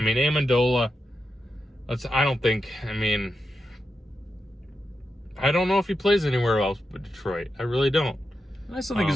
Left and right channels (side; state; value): both; normal; correlation 0.88